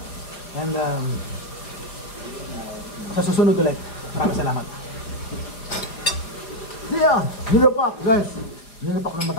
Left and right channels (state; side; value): late; right; 4.9 ms